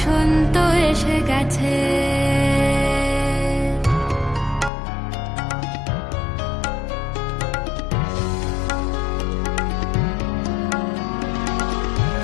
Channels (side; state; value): right; drops out; at 4.7 s